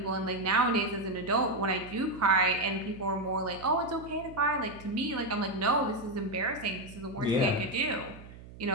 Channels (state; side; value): noise; right; hum, 17 dB below the sound